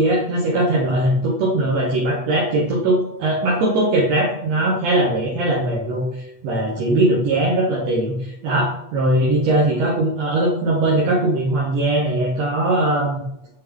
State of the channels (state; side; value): late; left; 8.3 ms